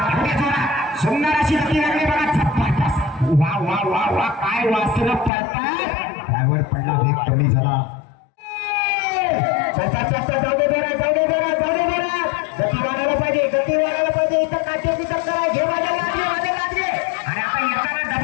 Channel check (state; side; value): drops out; right; at 5.3 s